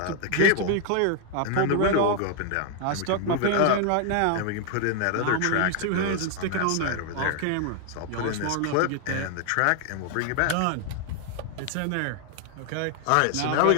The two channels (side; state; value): both; different; correlation 0.00